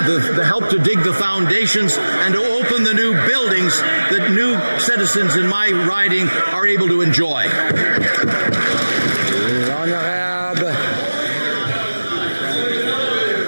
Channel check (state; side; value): inverted; both; correlation -1.00